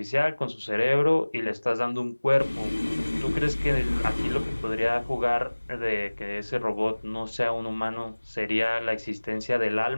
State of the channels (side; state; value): both; inverted; correlation -1.00